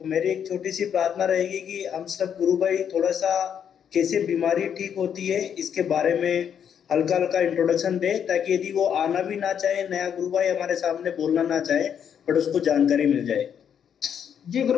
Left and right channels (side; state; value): right; quieter; 8.3 dB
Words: मेरी एक छोटी सी प्रार्थना रहेगी कि हम सब गुरु भाई थोड़ा सा कैसे बीमारी ठीक होती है इसके बारे में हल्का हल्का इंट्रोडक्शन दे, ताकि यदि वो आना भी ना चाहे, नया गुरु भाई हमारे सामने बोलना ना चाहे, बट उसको जानकारी मिल जाए। जी गुरु